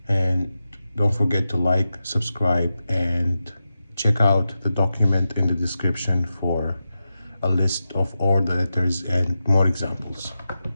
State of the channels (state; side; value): inverted; both; correlation -0.91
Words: And don't forget to like, subscribe, and check out the document in the description for a list of all the letters and more examples.